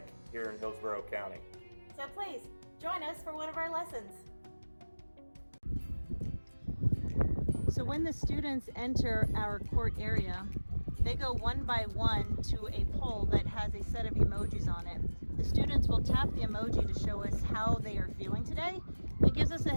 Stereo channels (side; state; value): both; inverted; correlation -1.00